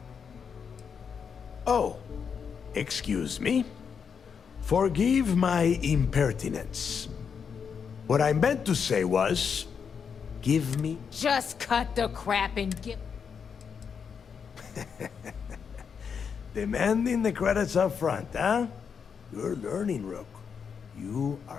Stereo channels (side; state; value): right; quieter; 6.6 dB